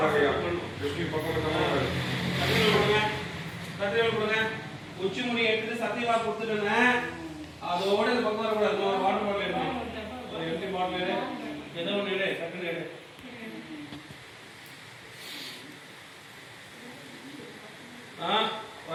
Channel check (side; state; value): both; identical; correlation 1.00